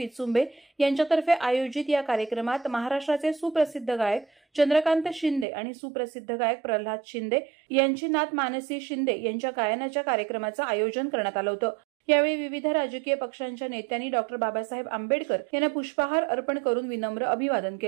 यांच्यातर्फे आयोजित या कार्यक्रमात महाराष्ट्राचे सुप्रसिद्ध गायक चंद्रकांत शिंदे आणि सुप्रसिद्ध गायक प्रल्हाद शिंदे यांची नात मानसी शिंदे यांच्या गायनाच्या कार्यक्रमाचं आयोजन करण्यात आलं होतं। यावेळी विविध राजकीय पक्षांच्या नेत्यांनी डॉक्टर बाबासाहेब आंबेडकर यांना पुष्पहार अर्पण करून विनम्र अभिवादन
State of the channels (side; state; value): left; drops out; at 5.5 s